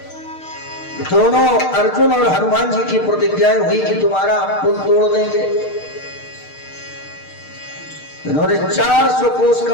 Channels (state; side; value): late; right; 6.6 ms